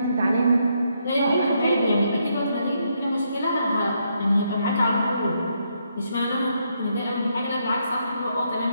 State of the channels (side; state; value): both; inverted; correlation -0.76